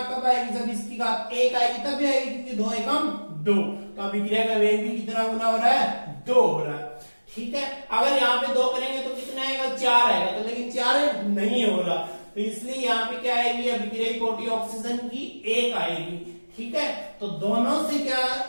कब आएगी, जब इसकी घात 1 आएगी तभी आएगी, क्योंकि 2 एकम 2। तो अभिक्रिया का वेग भी कितना गुना हो रहा है, 2 हो रहा है। ठीक है, अगर यहाँ पे 2 करेंगे तो कितना आएगा, 4 आएगा। तो लेकिन 4 नहीं हो रहा, तो इसलिए यहाँ पे क्या आएगी, अभिक्रिया कोटि ऑक्सीजन की 1 आएगी। ठीक है, तो दोनों से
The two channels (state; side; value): inverted; both; correlation -1.00